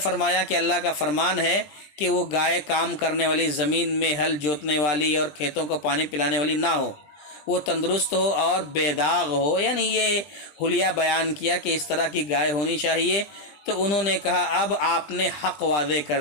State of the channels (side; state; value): right; late; 20 ms